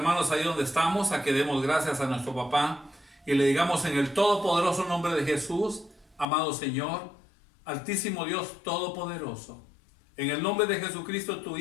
ahí donde estamos a que demos gracias a nuestro papá y le digamos en el todopoderoso nombre de Jesús: amado Señor, altísimo Dios todopoderoso, en el nombre de Jesucristo, tu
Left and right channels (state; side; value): drops out; right; at 6.2 s